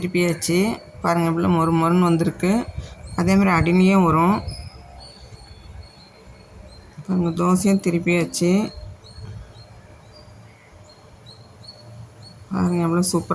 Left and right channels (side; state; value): both; identical; correlation 1.00